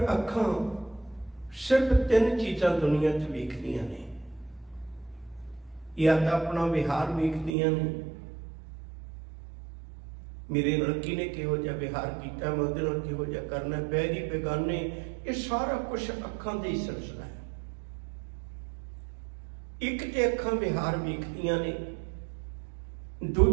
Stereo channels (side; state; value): left; drops out; at 7.6 s